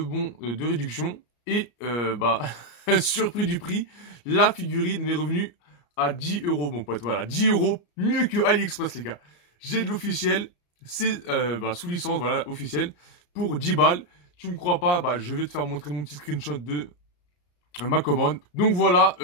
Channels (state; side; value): late; right; 34 ms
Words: de réduction, et bah, surpris du prix, la figurine m'est revenue à 10 €, mon pote. Voilà, 10 €, mieux que AliExpress, les gars. J'ai de l'officiel, c'est sous licence, voilà, officiel, pour 10 balles. Tu me crois pas, bah, je vais te faire montrer mon petit screenshot de ma commande. Donc voilà,